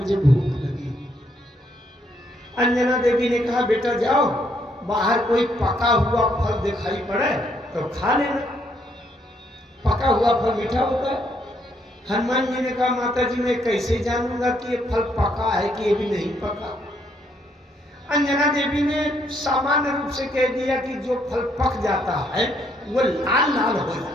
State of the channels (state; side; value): normal; both; correlation 0.71